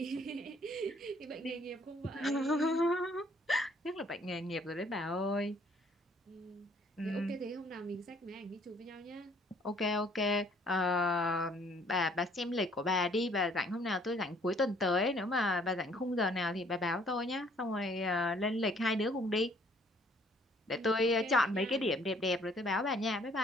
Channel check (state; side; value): normal; both; correlation 0.61